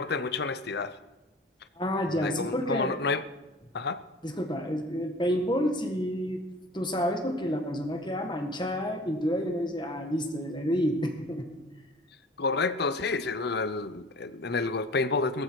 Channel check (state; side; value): normal; both; correlation 0.44